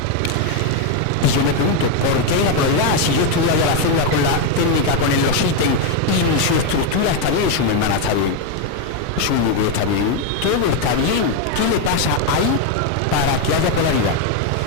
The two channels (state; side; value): different; both; correlation 0.02